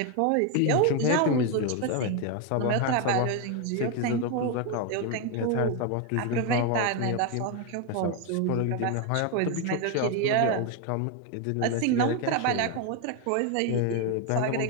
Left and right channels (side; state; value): both; different; correlation 0.01